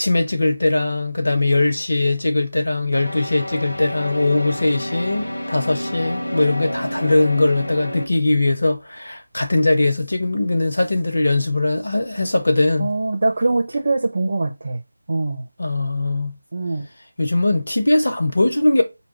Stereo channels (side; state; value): both; inverted; correlation -0.96